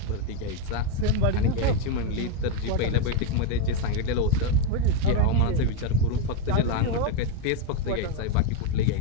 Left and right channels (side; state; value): both; different; correlation 0.02